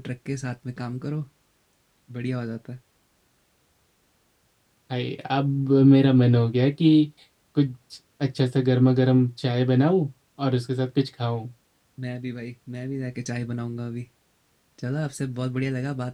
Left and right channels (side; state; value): both; identical; correlation 1.00